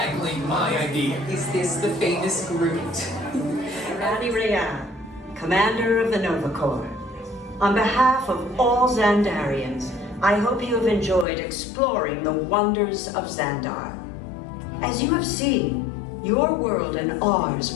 my idea. Is this the famous Groot? Randy Rayan, Commander of the Nova Corps. On behalf of all Xandarians, I hope you have enjoyed exploring the wonders of Xandar. As you have seen, your world and ours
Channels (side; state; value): right; drops out; at 11.2 s